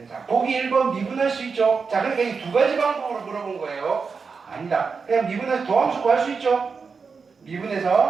자, 보기 1번 미분할 수 있죠? 자, 그러니까 이 두 가지 방법으로 물어본 거예요. 아니다. 그냥 미분해서 도함수 구할 수 있죠?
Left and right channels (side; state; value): left; quieter; 5.2 dB